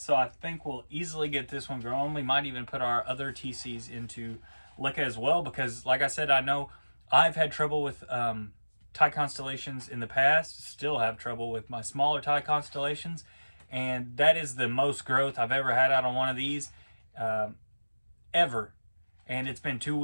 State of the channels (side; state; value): both; inverted; correlation -1.00